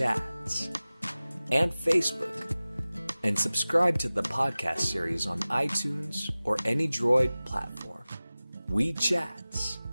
and Facebook, and subscribe to the podcast series on iTunes or any Droid platform. WeeChats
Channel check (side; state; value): both; inverted; correlation -0.97